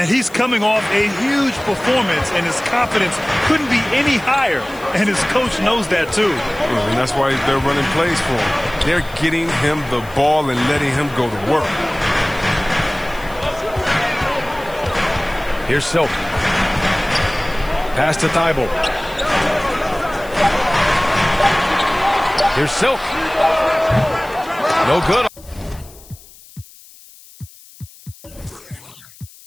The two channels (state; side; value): noise; left; hiss, 22 dB below the sound